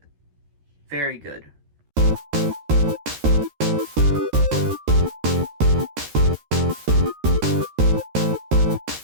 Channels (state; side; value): late; left; 13 ms